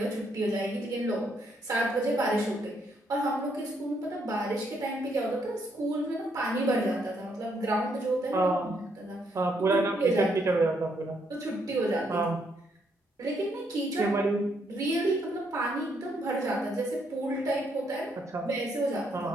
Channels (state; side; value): normal; both; correlation 0.73